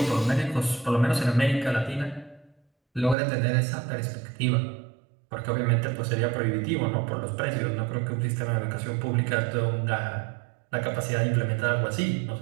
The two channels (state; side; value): drops out; left; at 3.2 s